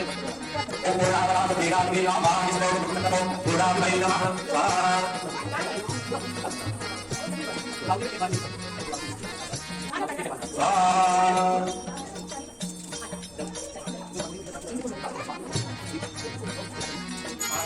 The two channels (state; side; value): identical; both; correlation 1.00